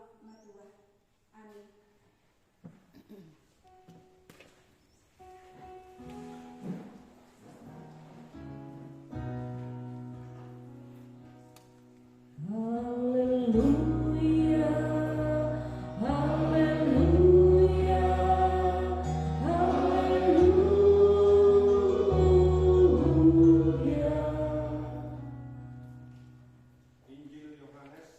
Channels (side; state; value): both; identical; correlation 1.00